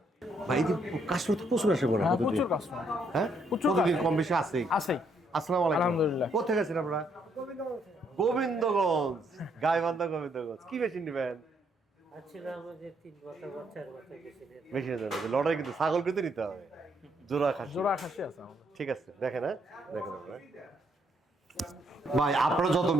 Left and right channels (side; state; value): both; normal; correlation 0.72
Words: ভাই এই কাস্টমার তো প্রচুর আসে বড় হ্যাঁ প্রচুর কাস্টমার হ্যাঁ প্রচুর প্রতিদিন customer। কম বেশি আছেই আছেই আসসালামু আলাইকুম আলহামদুলিল্লাহ। কোথায় গেছেন আপনারা গোবিন্দগঞ্জ গাইবান্ধা গোবিন্দগঞ্জ কি মেশিন নেবেন আছিলাম যে 3 বছর বা 4 বছর গেছিলেন মেশিনে যাবে লড়াই কিন্তু ছাগল কিন্তু নিতে হবে জোড়া খাসি জোড়া খাসি আছে আমাদের ঠিক আছে দেখেন হ্যাঁ দেখেন আপনারা ভাই আপনারা যত